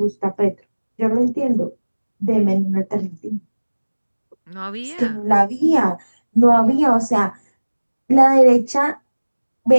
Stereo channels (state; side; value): inverted; both; correlation -1.00